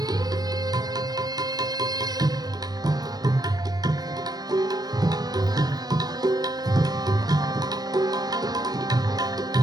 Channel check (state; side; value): late; left; 0.19 ms